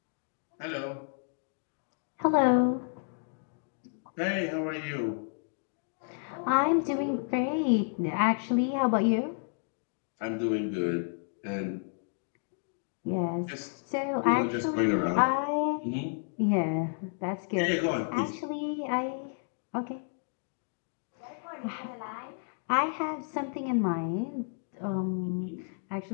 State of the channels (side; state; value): right; silent; 57 dB below the other